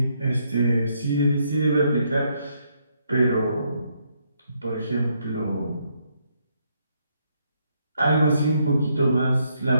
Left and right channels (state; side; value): inverted; both; correlation -0.75